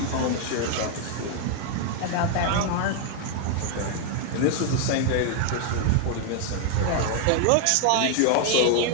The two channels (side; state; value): both; different; correlation 0.00